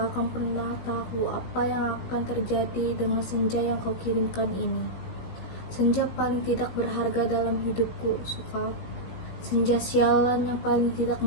akan pernah tahu apa yang akan terjadi dengan senja yang kau kirimkan ini. Senja paling tidak berharga dalam hidupku, Sukap. Senja sialan yang paling tidak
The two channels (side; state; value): right; late; 17 ms